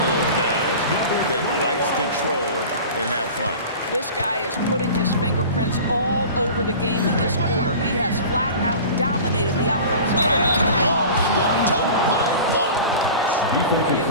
of those guys that likes control and have fun. This guy is putting his fingerprints all over the game in this quarter. He has flat out dominated the offensive end. Oh, and the jump by Barnes. Well, you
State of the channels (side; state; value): both; inverted; correlation -0.37